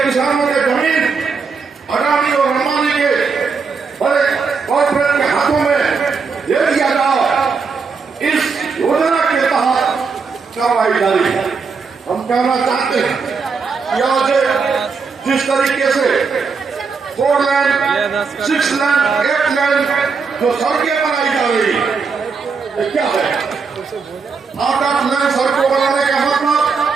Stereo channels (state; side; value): quieter; left; 5.1 dB